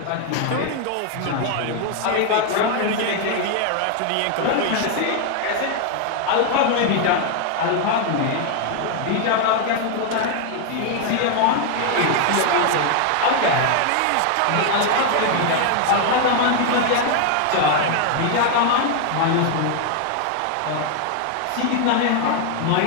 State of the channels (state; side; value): different; both; correlation 0.00